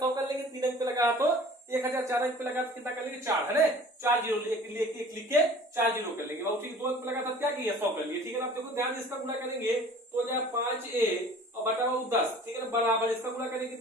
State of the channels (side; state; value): both; normal; correlation 0.47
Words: कर लेंगे, 3 अंक पे लगा तो 1000, 4 अंक पे लगा तो कितना कर लेंगे 4 है ना, 4 0 एक लिख के 4 0 कर लेंगे बाबू। ठीक, 2 अंक पे लगा था क्या किया 100 कर लिए। ठीक है ना, आप देखो ध्यान से इसका गुणा करेंगे तो हो जाए 5a और बटा बाबू 10। ठीक है ना, बराबर इसका गुणा करेंगे